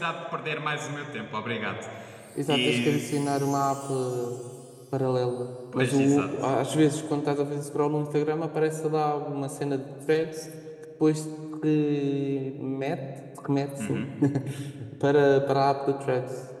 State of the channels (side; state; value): both; identical; correlation 1.00